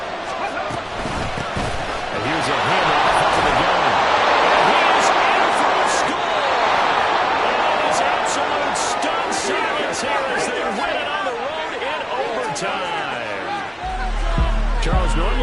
And here's a handoff to the gun. And he is in for a score. And it's absolute stunned silence here as they win it on the road in overtime. Charles,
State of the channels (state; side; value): identical; both; correlation 1.00